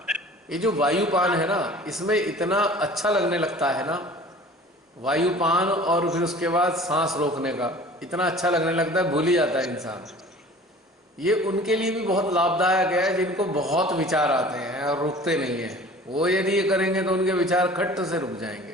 ये जो वायुपान है ना, इसमें इतना अच्छा लगने लगता है ना, वायुपान और फिर उसके बाद सांस रोकने का इतना अच्छा लगने लगता है, भूल ही जाता है इंसान। ये उनके लिए भी बहुत लाभदायक है जिनको बहुत विचार आते हैं और रुकते नहीं हैं। वो यदि ये करेंगे तो उनके विचार खट्ट से रुक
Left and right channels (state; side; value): normal; both; correlation 0.45